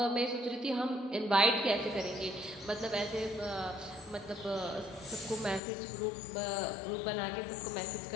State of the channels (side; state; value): right; drops out; at 5.6 s